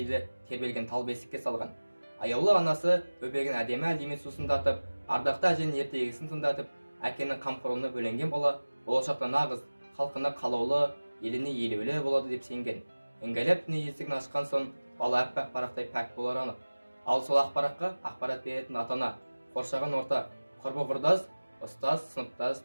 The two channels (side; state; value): both; inverted; correlation -1.00